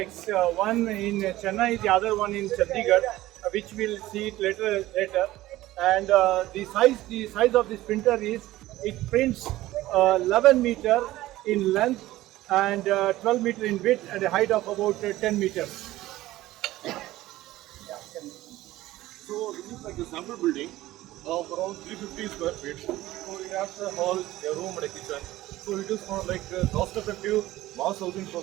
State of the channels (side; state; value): left; quieter; 16.4 dB